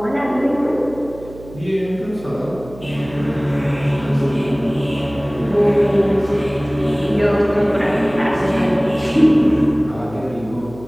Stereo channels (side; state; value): right; noise; hum, 17 dB below the sound